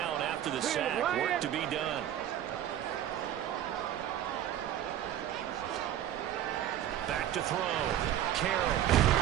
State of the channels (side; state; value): left; quieter; 11.4 dB